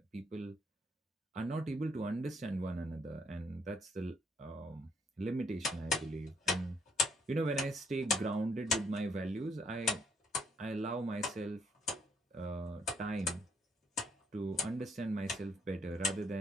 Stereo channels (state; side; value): normal; both; correlation 0.69